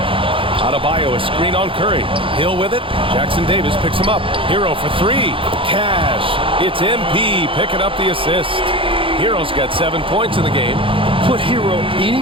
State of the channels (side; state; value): left; late; 0.25 ms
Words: Adebayo, a screen on Curry. Hill with it. Jackson Davis picks him up. Hero for 3. Cash. It's MP picking up the assist. Hero's got 7 points in the game. Put Hero